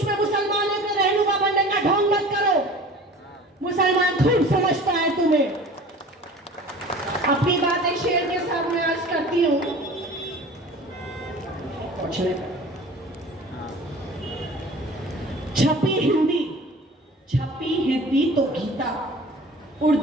में मुसलमानों के रहनुमा बनने का ढोंग मत करो। मुसलमान खूब समझता है तुम्हें। अपनी बातें शेर के सामने अर्ज करती हूँ। छपी हिंदी तो गीता,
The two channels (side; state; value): both; normal; correlation 0.42